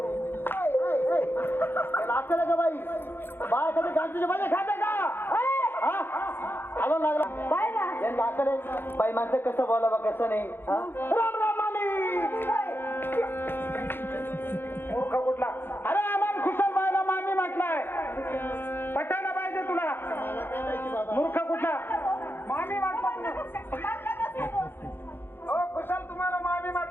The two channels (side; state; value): right; late; 0.10 ms